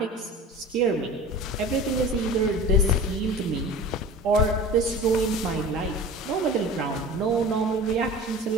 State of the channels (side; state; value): both; normal; correlation 0.37